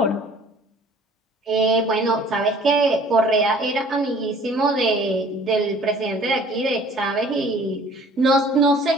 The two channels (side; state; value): both; normal; correlation 0.52